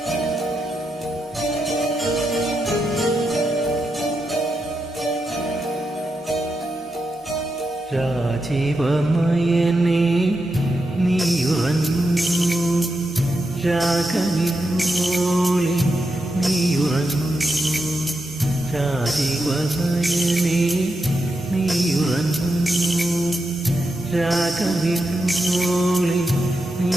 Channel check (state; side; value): normal; both; correlation 0.86